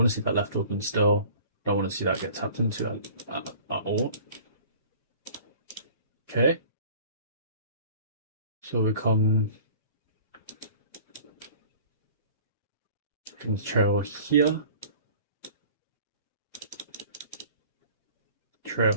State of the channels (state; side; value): inverted; both; correlation -0.46